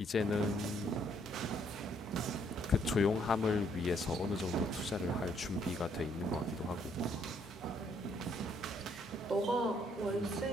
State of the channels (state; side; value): normal; both; correlation 0.69